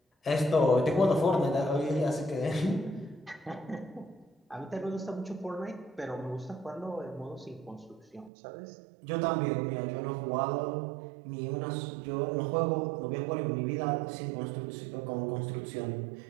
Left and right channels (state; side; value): drops out; left; at 8.3 s